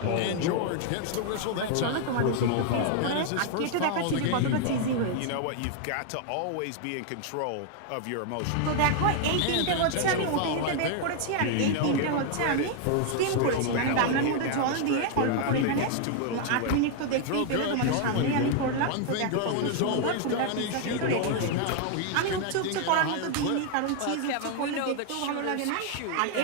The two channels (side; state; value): both; different; correlation 0.00